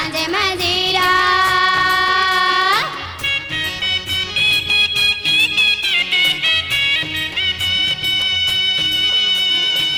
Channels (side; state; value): left; noise; hum, 26 dB below the sound